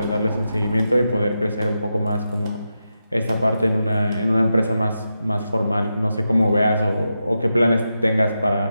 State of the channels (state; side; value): inverted; both; correlation -0.88